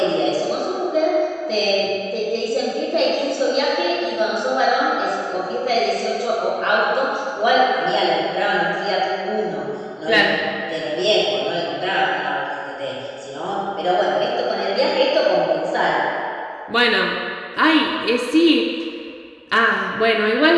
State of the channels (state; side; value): identical; both; correlation 1.00